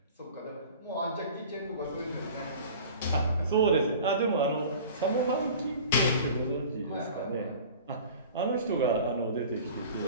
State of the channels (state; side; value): inverted; both; correlation -0.42